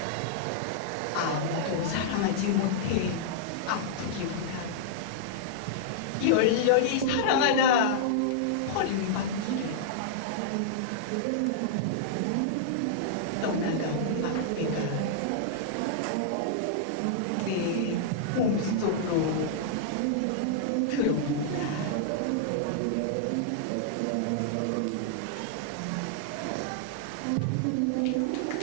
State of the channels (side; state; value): both; different; correlation -0.02